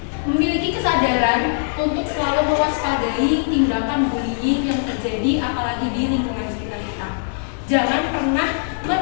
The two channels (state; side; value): silent; right; 65 dB below the other